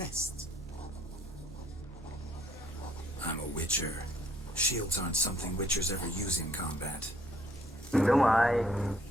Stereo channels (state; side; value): normal; both; correlation 0.65